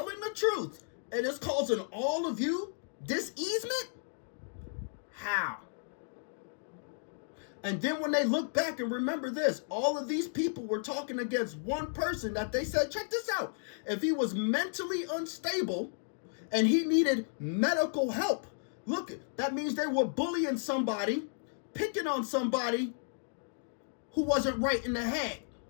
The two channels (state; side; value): silent; right; digital silence